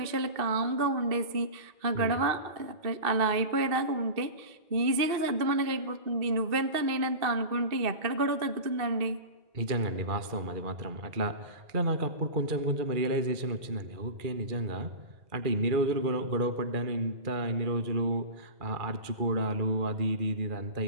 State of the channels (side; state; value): left; late; 2.6 ms